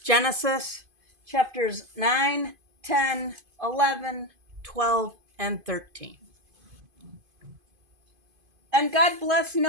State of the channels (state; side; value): late; left; 2.5 ms